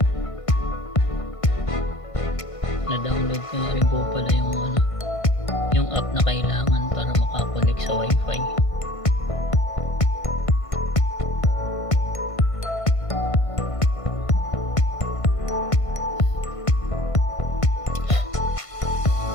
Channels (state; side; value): late; right; 1.5 ms